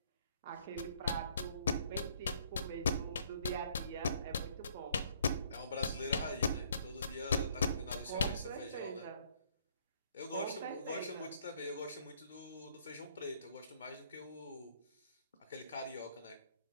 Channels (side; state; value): both; inverted; correlation -0.62